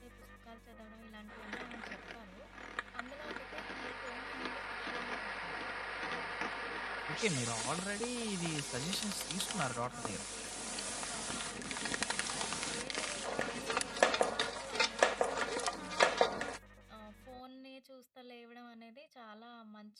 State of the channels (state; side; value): identical; both; correlation 1.00